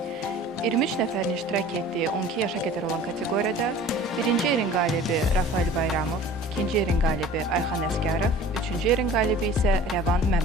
23 nəfərin iştirak etdiyi 12 yaşa qədər olan kateqoriyada birinci yerin qalibi Rafael Bayramov, ikinci yerin qalibi Ayxan Əsgərov, üçüncü yerin qalibi isə Rəvan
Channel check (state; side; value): normal; both; correlation 0.44